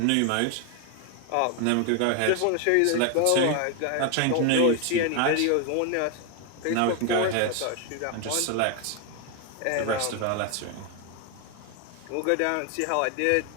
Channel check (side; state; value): both; different; correlation 0.01